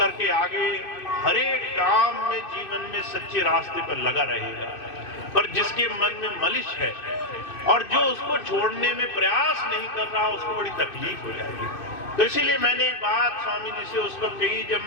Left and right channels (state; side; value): late; right; 2.6 ms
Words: आगे हर एक काम में, जीवन में सच्चे रास्ते पर लगा रहेगा। पर जिसके मन में मलिश है और जो उसको छोड़ने में प्रयास नहीं कर रहा, उसको बड़ी तकलीफ हो जाएगी। तो इसीलिए मैंने एक बात स्वामी जी से उस वक्त कही